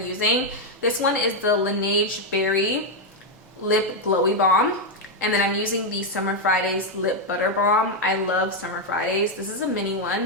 using. This one is the Laneige Berry Lip Glowy Balm. And then I'm using the Summer Fridays Lip Butter Balm. I love Summer Fridays. This is a mini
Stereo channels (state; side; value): normal; both; correlation 0.02